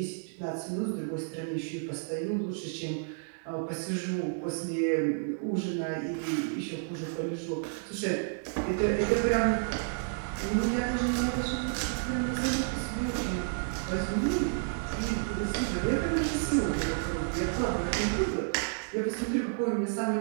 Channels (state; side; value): silent; left; digital silence